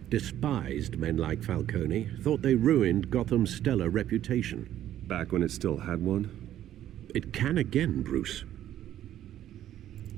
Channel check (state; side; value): quieter; left; 11.9 dB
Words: despised men like Falcone, thought they ruined Gotham's stellar reputation. Back when it still had one? It can again, Bruce.